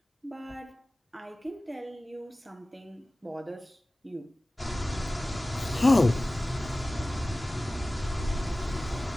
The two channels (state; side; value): normal; both; correlation 0.97